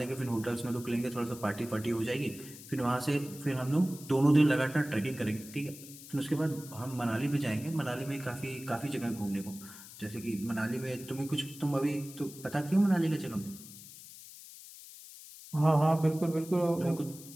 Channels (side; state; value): left; noise; hiss, 16 dB below the sound